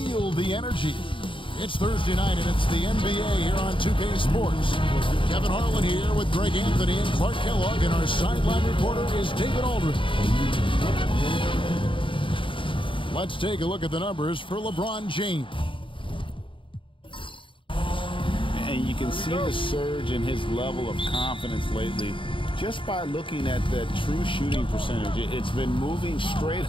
the energy. It's Thursday night, and it's the NBA here on 2K Sports. Kevin Harlan here with Greg Anthony and Clark Kellogg, and our sideline reporter is David Aldridge. Let's take a look at the numbers for LeBron James. And you can see the surge in his level of confidence lately just by looking at that true shooting percentage. It's been moving straight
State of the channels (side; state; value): right; late; 0.25 ms